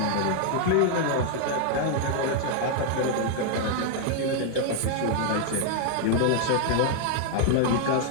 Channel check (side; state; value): both; different; correlation 0.00